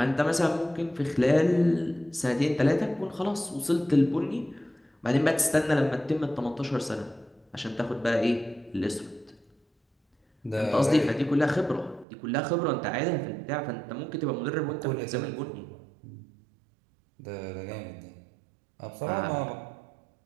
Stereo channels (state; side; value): drops out; left; at 12.1 s